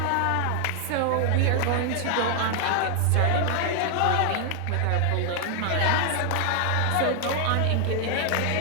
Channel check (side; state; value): both; different; correlation 0.00